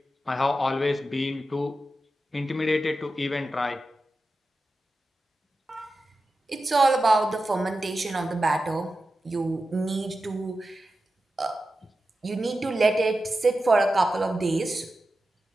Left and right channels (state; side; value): normal; both; correlation 0.92